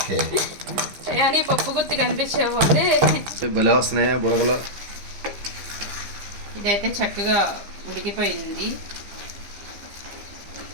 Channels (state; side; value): late; left; 15 ms